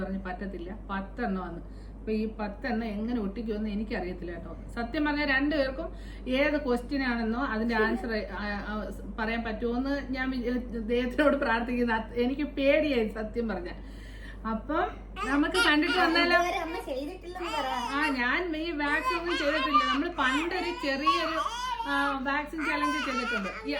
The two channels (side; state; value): both; identical; correlation 1.00